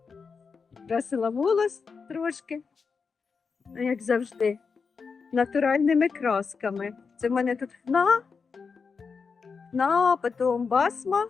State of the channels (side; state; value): right; quieter; 5.3 dB